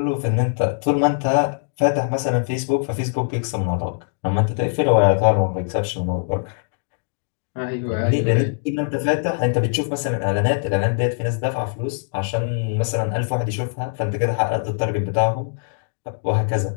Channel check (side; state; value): right; silent; digital silence